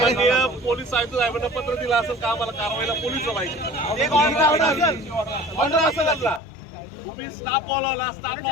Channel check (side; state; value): right; drops out; at 6.4 s